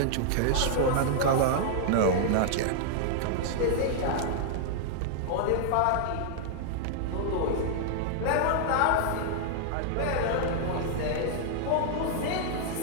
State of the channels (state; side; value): different; both; correlation -0.01